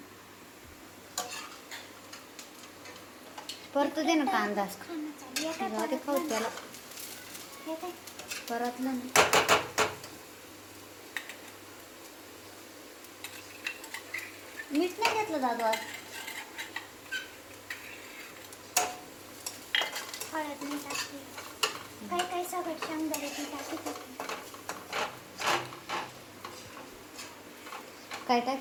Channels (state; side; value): identical; both; correlation 1.00